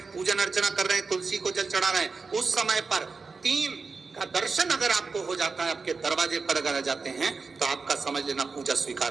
पूजन अर्चना कर रहे हैं, तुलसी को जल चढ़ा रहे हैं, उस समय पर 3 का दर्शन अगर आपको हो जाता है, आपके दरवाजे पर अगर आ जाते हैं तो आपका समझ लेना पूजा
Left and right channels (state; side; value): quieter; left; 4.5 dB